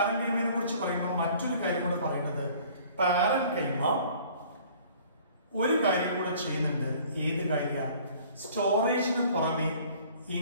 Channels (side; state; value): both; inverted; correlation -0.52